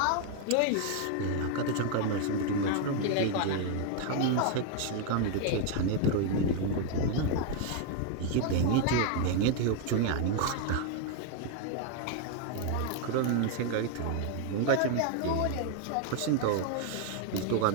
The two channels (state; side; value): different; both; correlation 0.00